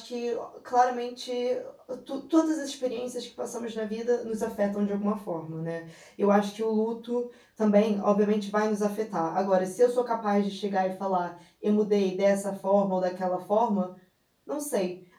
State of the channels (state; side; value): identical; both; correlation 1.00